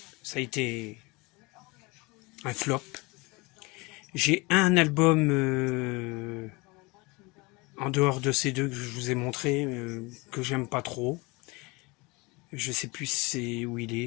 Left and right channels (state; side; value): quieter; right; 25.7 dB